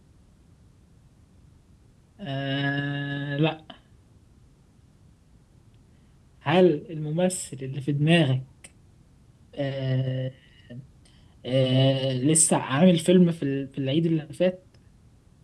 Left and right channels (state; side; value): identical; both; correlation 1.00